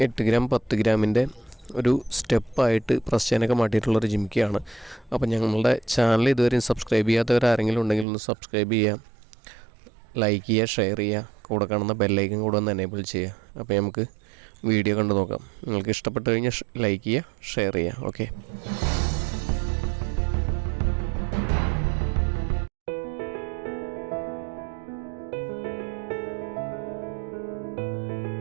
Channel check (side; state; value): left; drops out; at 8.1 s